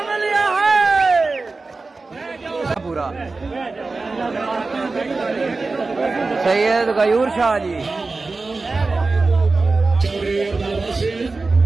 मलिया है पूरा सैयद गयूर शाह जी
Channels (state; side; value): quieter; left; 3.7 dB